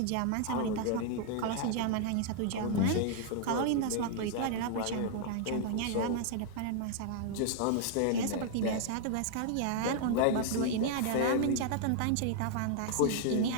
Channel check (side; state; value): both; different; correlation 0.00